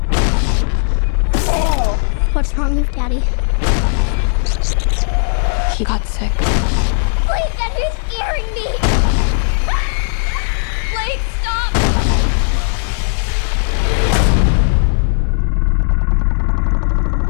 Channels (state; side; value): silent; right; 69 dB below the other